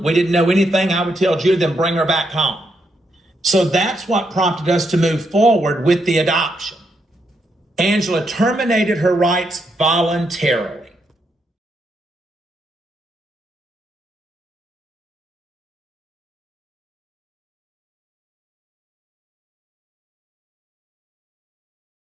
We didn't know anything. I would tell Julie, then bring her back home. So that's what prompted us to move forward with the adoption. Angela terminated her rights voluntarily.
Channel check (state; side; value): normal; both; correlation 0.79